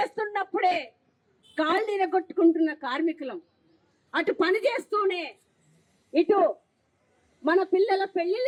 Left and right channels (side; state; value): both; identical; correlation 1.00